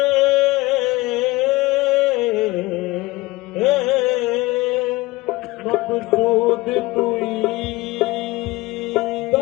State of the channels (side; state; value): right; quieter; 20.7 dB